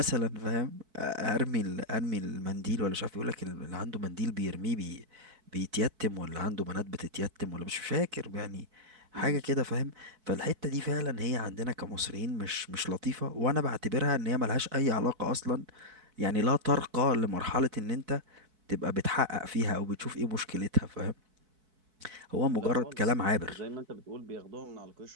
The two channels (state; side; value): late; left; 4.6 ms